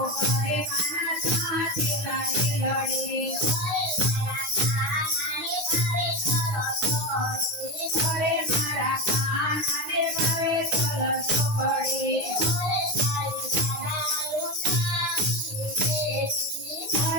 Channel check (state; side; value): late; left; 9.7 ms